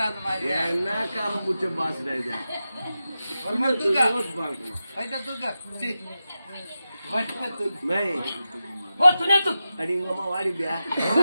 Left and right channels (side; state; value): both; inverted; correlation -0.92